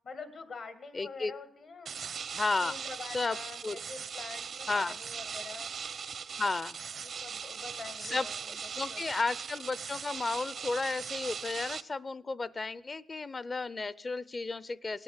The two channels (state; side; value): normal; both; correlation 0.90